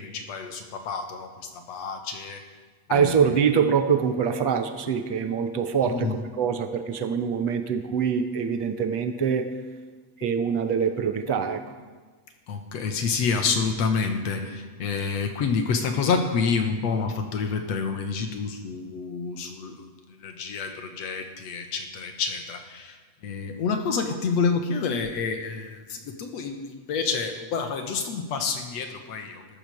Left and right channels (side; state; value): right; late; 8.3 ms